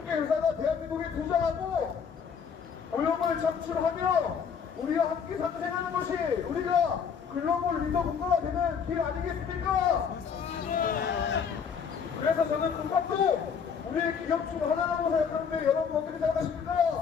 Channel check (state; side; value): quieter; right; 6.7 dB